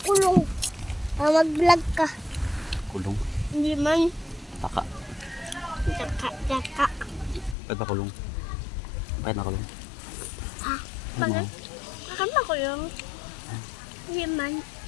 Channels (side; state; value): right; drops out; at 7.6 s